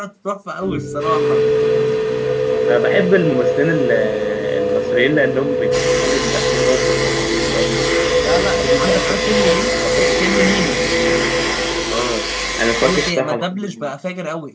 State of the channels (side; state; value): both; identical; correlation 1.00